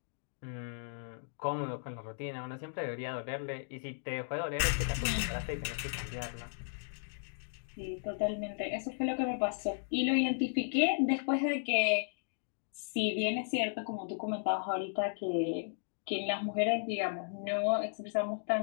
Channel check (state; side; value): silent; right; digital silence